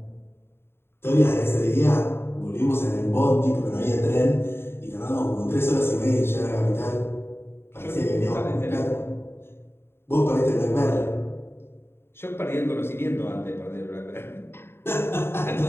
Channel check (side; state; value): right; late; 0.11 ms